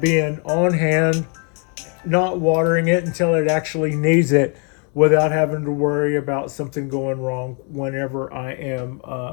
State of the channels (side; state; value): right; quieter; 37.4 dB